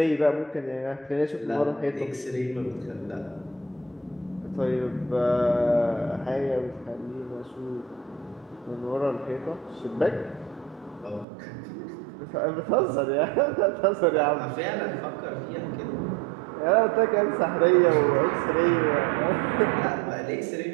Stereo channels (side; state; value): left; drops out; at 11.2 s